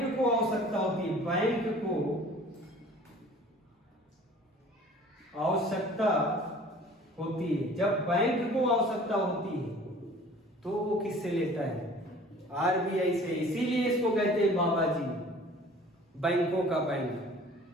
को आवश्यकता होती है, बैंक को आवश्यकता होती है, जब बैंक को आवश्यकता होती है तो वो किससे लेता है? आरबीआई से। इसीलिए इसको कहते हैं बाबा जी, बैंकों का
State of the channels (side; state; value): both; normal; correlation 0.48